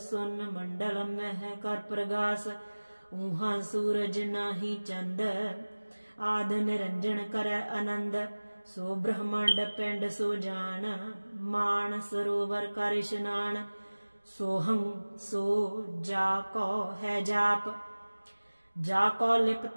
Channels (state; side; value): inverted; both; correlation -1.00